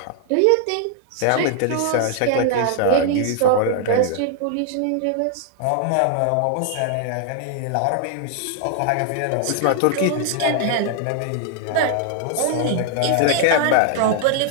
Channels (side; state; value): both; different; correlation 0.00